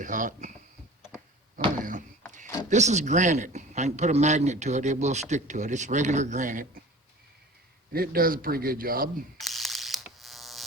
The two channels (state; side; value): normal; both; correlation 0.41